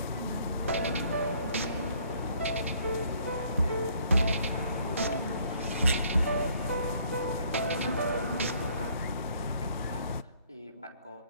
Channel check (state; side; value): inverted; both; correlation -0.63